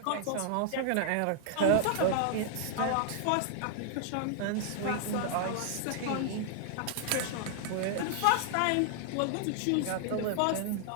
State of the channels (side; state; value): both; different; correlation 0.00